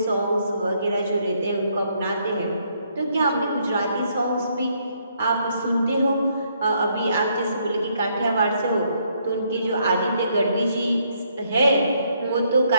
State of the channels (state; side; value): inverted; both; correlation -0.71